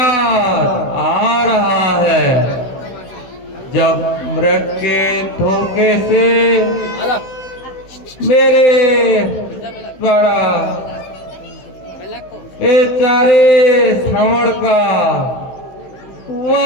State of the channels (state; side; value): late; right; 16 ms